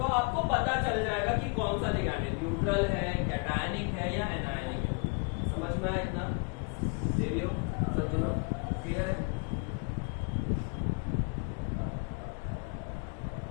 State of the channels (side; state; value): right; quieter; 33.1 dB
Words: आपको पता चल जाएगा कि कौन सा लिगैंड है, न्यूट्रल है, कैटायनिक है या एनायनिक है। समझ में आया इतना? देवियो, सज्जनों, क्लियर है?